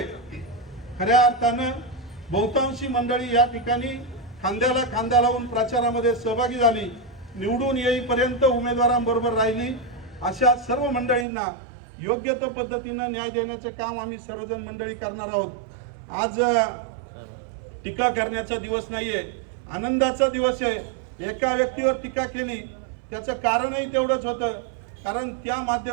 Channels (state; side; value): drops out; left; at 11.2 s